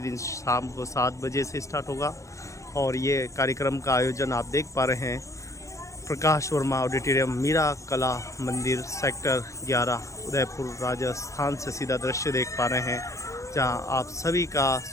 शाम को 7 बजे से स्टार्ट होगा। और ये कार्यक्रम का आयोजन आप देख पा रहे हैं प्रकाश वर्मा ऑडिटोरियम मीरा कला मंदिर सेक्टर 11 उदयपुर राजस्थान से सीधा दृश्य देख पा रहे हैं, जहां आप सभी का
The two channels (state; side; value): late; right; 0.15 ms